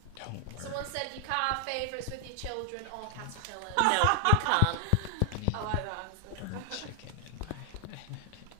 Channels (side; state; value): both; different; correlation 0.00